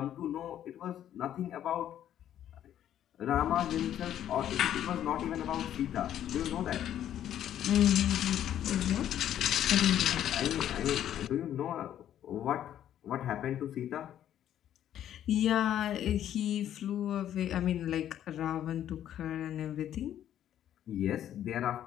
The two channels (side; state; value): right; quieter; 11.0 dB